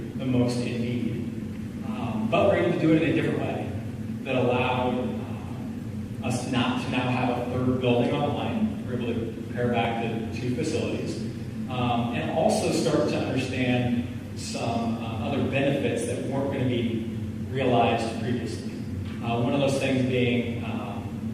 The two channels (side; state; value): both; identical; correlation 1.00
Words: the most in need. But we're able to do it in a different way that allowed us not to now have a 3rd building on the line. We're able to compare back the 2 facilities and also start to understand some other benefits that weren't going to be realized previously. One of those things being